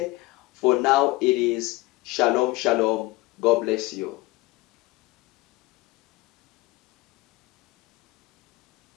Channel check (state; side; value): quieter; right; 20.1 dB